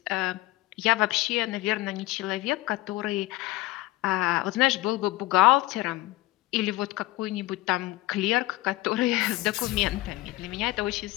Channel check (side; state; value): right; quieter; 18.5 dB